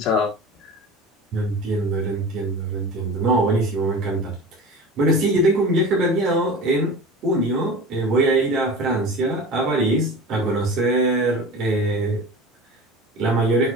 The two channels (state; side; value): normal; both; correlation 0.34